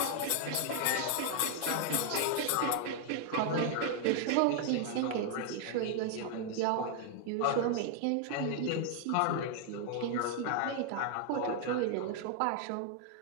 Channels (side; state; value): both; different; correlation 0.00